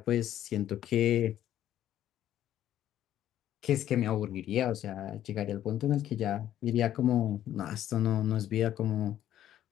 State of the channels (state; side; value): quieter; right; 11.8 dB